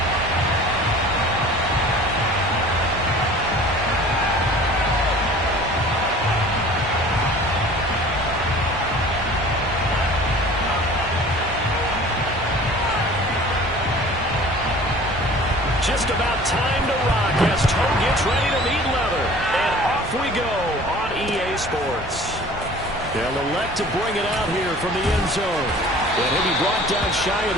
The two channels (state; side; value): normal; both; correlation 0.46